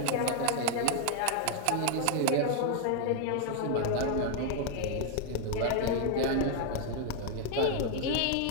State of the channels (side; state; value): both; different; correlation 0.00